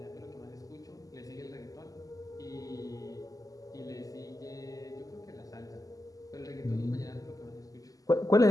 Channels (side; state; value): right; late; 0.17 ms